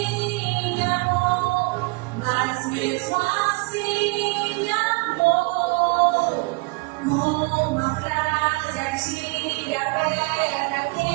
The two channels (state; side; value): quieter; left; 27.6 dB